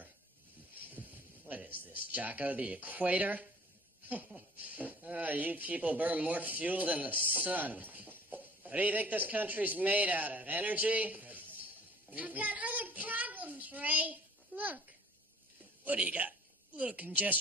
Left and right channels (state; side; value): normal; both; correlation 0.50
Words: What is this, Jocko? The equator? You people burn more fuel than the sun. What do you think this country's made out of? Energy? I've got other problems, Ray. Look, What do you got? Little